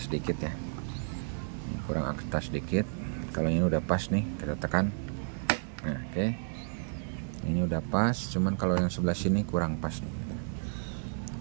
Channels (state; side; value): silent; left; 57 dB below the other